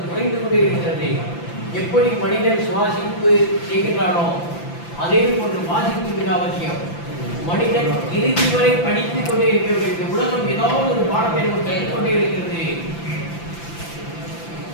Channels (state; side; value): late; right; 5.9 ms